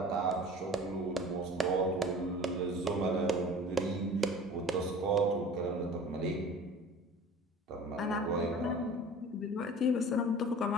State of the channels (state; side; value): normal; both; correlation 0.43